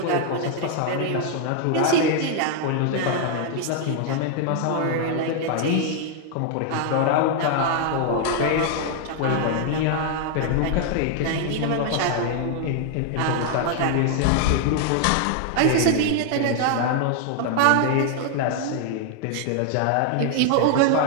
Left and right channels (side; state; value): both; different; correlation 0.00